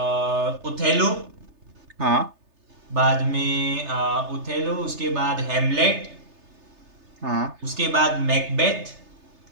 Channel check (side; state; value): left; late; 3.3 ms